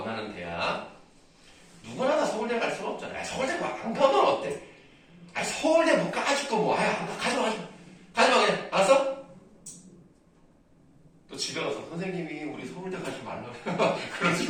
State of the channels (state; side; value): identical; both; correlation 1.00